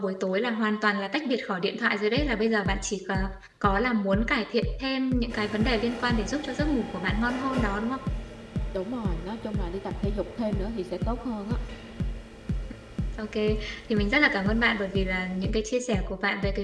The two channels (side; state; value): both; identical; correlation 1.00